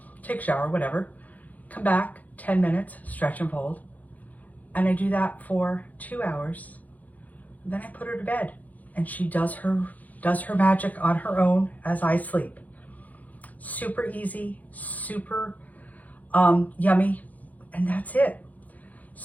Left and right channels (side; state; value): right; late; 0.078 ms